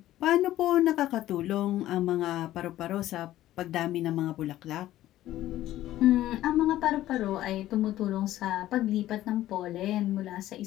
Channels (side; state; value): right; quieter; 14.2 dB